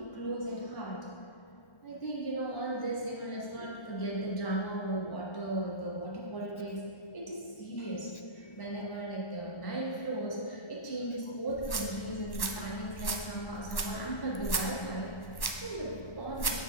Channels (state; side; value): late; right; 1.1 ms